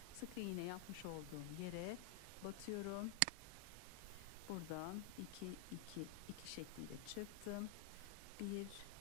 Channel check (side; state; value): both; different; correlation 0.00